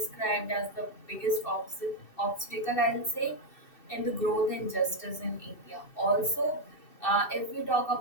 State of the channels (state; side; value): late; right; 2.7 ms